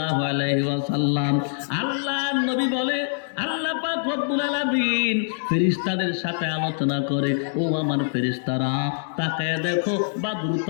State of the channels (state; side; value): silent; right; digital silence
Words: আলাইহি ওয়াসাল্লাম। আল্লাহর নবী বলে, আল্লাহ পাক রব্বুল আলামিন ফেরেশতাদের সাথে আলোচনা করে, ও আমার ফেরেশতারা তাকায় দেখো,